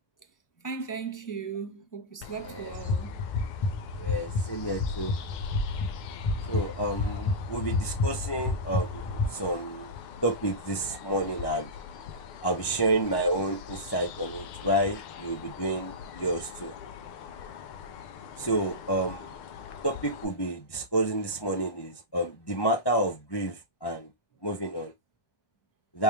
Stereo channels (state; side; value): late; right; 1.1 ms